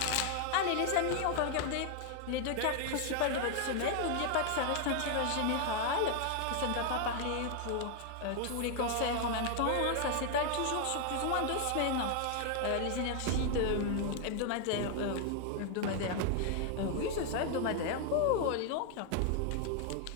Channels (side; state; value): both; different; correlation 0.00